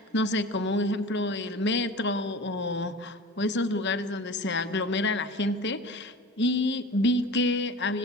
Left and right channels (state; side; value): normal; both; correlation 0.36